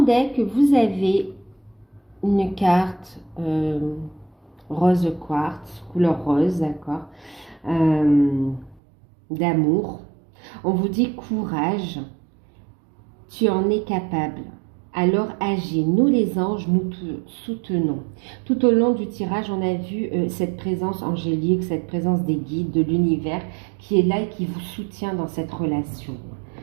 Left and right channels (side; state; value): left; drops out; at 8.8 s